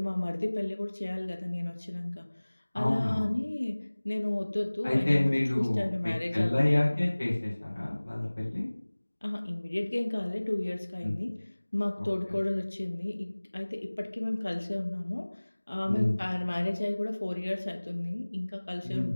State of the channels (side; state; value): both; inverted; correlation -1.00